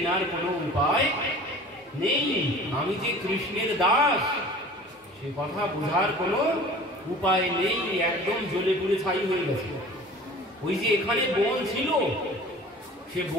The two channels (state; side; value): normal; both; correlation 0.43